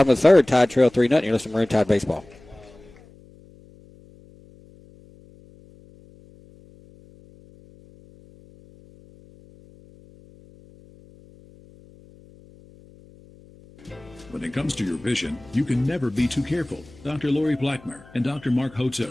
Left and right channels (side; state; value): left; noise; hum, 24 dB below the sound